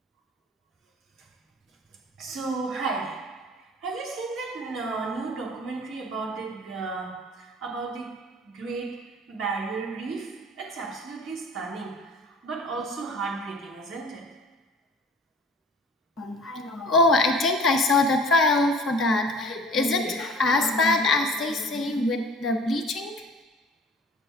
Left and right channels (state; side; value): normal; both; correlation 0.46